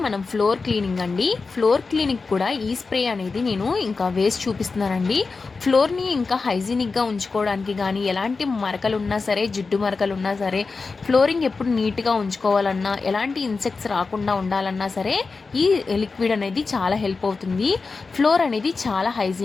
మనం ఫ్లోర్ క్లీనింగ్ అండి. ఫ్లోర్ క్లీనింగ్ కూడా ఈ స్ప్రే అనేది నేను ఇంకా వేసి చూపిస్తున్నానండి. ఫ్లోర్ని ఇంకా హైజీనిక్గా ఉంచుకోవడానికి కానీ ఎలాంటి మరకలు ఉన్నా సరే, జిడ్డు మరకలు ఉన్నా సరే, ఫ్లోరింగ్ ఎప్పుడు నీట్గా ఉంచుకోవాలన్నా, ఎలాంటి ఇన్సెక్ట్స్ రాకుండా ఉండాలన్నా సరే ఈ లిక్విడ్ అనేది చాలా హెల్ప్ అవుతుంది. ఫ్లోర్ అనేది చాలా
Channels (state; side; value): quieter; right; 4.3 dB